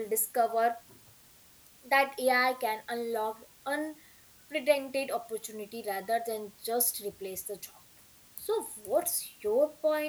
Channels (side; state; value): both; identical; correlation 1.00